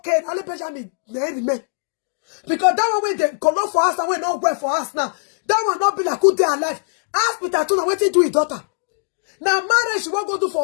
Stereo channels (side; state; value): right; silent; digital silence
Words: Now let Benjamin man. Because that one when they color for us and we not work for us now. That one not be like good day alive. Ask Peter Tuna what he do his daughter. Now marriage she won't go do